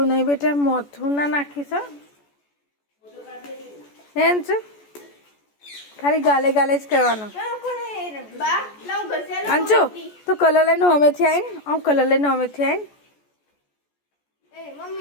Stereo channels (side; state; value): right; late; 14 ms